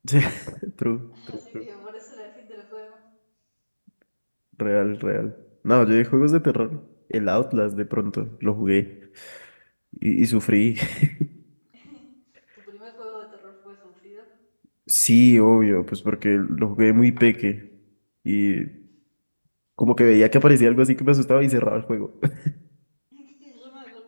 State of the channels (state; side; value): inverted; both; correlation -1.00